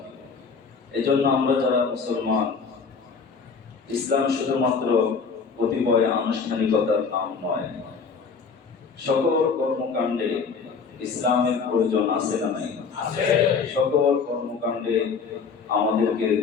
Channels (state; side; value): quieter; right; 5.4 dB